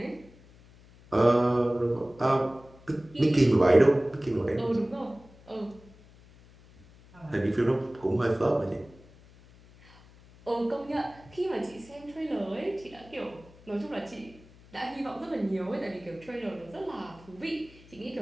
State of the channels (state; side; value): noise; left; hum, 24 dB below the sound